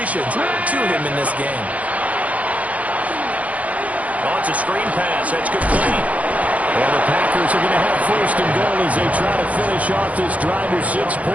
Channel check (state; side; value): late; left; 0.069 ms